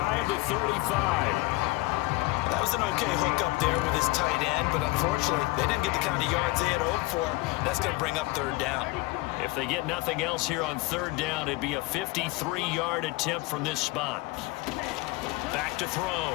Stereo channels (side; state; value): right; quieter; 21.6 dB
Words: of the 35. That was an okay hook up there with his tight end, but unfortunately, they didn't get the kind of yards they had hoped for. That's going to bring up 3rd down. If they get nothing else here on 3rd down, it'd be a 53-yard attempt from this spot. Back to